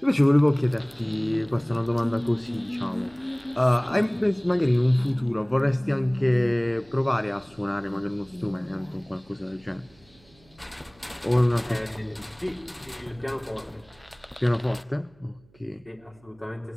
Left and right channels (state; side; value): noise; right; hum, 30 dB below the sound